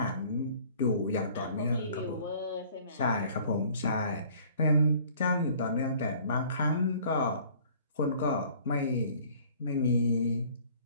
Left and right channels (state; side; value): inverted; both; correlation -0.53